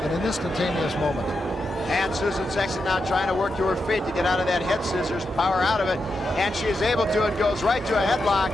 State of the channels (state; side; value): normal; both; correlation 0.86